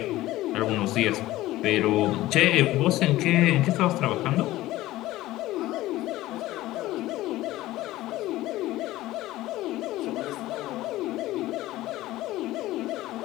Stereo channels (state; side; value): quieter; right; 16.5 dB